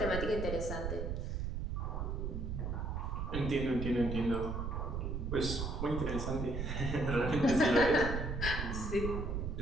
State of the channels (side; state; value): right; noise; rumble, 2 dB below the sound